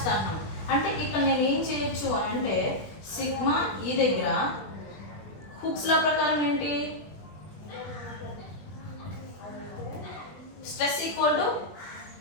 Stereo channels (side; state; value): right; late; 20 ms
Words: అంటే ఇక్కడ నేను ఏం చేయొచ్చు అంటే సిగ్మా ఈ దగ్గర హుక్స్ లా ప్రకారం ఏంటి stress equal to